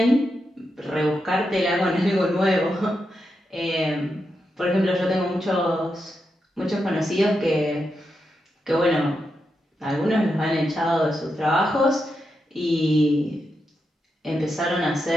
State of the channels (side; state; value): both; normal; correlation 0.86